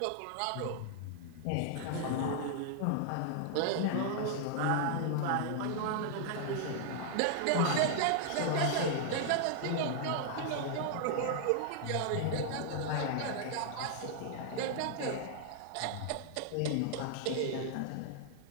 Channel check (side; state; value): both; different; correlation -0.01